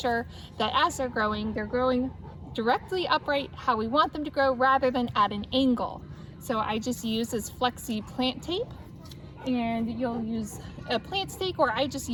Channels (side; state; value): both; identical; correlation 1.00